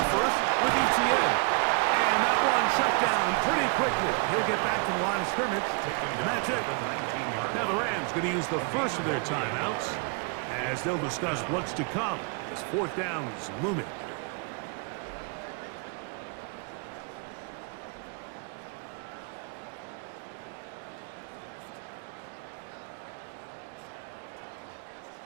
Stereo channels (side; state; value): left; quieter; 35.2 dB